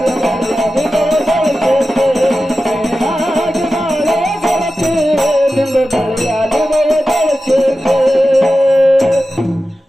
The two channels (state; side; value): normal; both; correlation 0.93